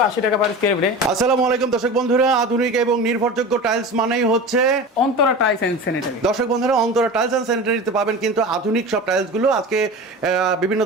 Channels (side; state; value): both; normal; correlation 0.32